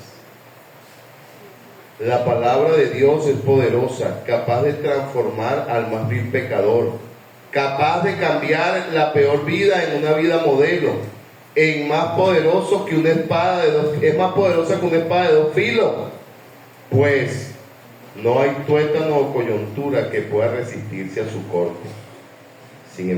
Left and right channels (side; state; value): both; identical; correlation 1.00